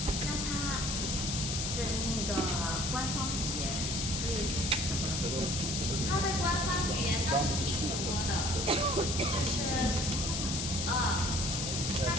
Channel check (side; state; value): left; noise; hiss, 1 dB below the sound